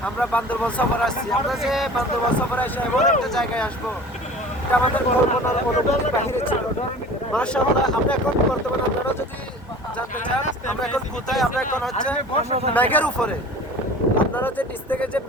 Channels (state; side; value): normal; both; correlation 0.42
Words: আমরা বান্দরবান সফর আসছি। আমরা যে বান্দরবান সফরে এসে এমন একটা জায়গায় আসবো, এটা আমাদের কল্পনার অনুভূতির বাহিরে ছিল। মাশাআল্লাহ, আমরা এখন বর্তমানে আপনারা যদি জানতে চান আমরা এখন কোথায়, আমরা এখন হচ্ছে মেঘের উপরে। আপনারা যে নিচ থেকে যে